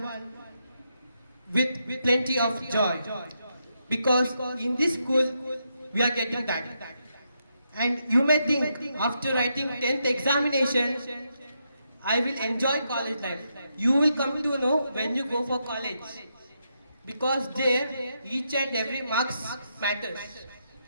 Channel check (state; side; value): inverted; both; correlation -0.82